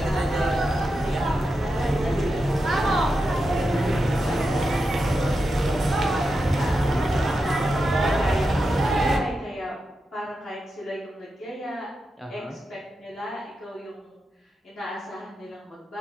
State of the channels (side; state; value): both; normal; correlation 0.88